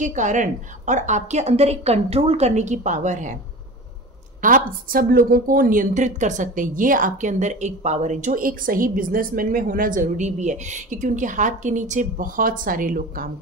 कारण और आपके अंदर एक कंट्रोल करने की पावर है। आप सब लोगों को नियंत्रित कर सकते हैं। ये आपके अंदर एक पावर है जो एक सही बिजनेसमैन में होना ज़रूरी भी है, क्योंकि उनके हाथ के नीचे बहुत सारे लोग काम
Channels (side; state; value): both; normal; correlation 0.34